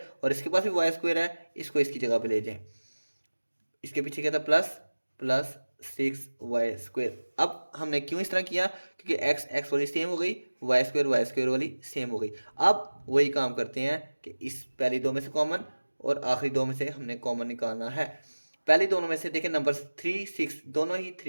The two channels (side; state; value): both; inverted; correlation -1.00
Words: और इसके पास भी y² है, इसको इसकी जगह पे ले जाएं। इसके पीछे क्या था, प्लस 6y²। अब हमने क्यों इस तरह किया, क्योंकि x वाली सेम हो गई, y² वाली सेम हो गई। अब वही काम करते हैं कि इस पहली दो में से कॉमन और आखिरी दो में से हमने कॉमन निकालना है। पहले दोनों में से देखें, नंबर 3, 6 दोनों ही